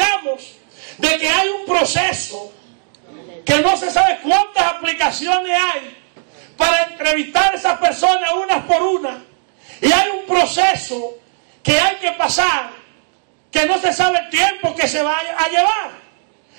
de que hay un proceso, que no se sabe cuántas aplicaciones hay para entrevistar a esas personas unas por una. Y hay un proceso que hay que pasar, que no se sabe el tiempo que se va a llevar.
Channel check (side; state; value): left; silent; 62 dB below the other